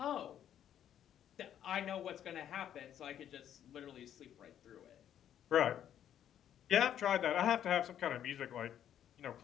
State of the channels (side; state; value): right; quieter; 10.2 dB